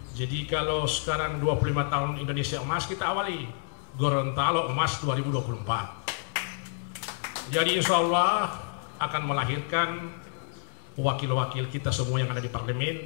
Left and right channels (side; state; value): right; silent; 57 dB below the other